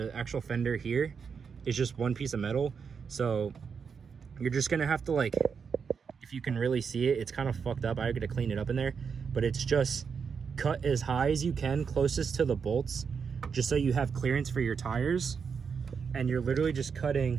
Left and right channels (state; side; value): quieter; left; 6.1 dB